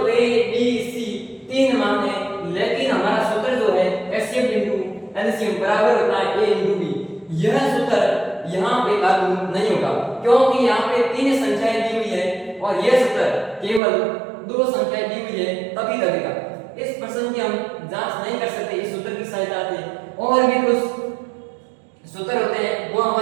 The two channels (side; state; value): left; drops out; at 13.8 s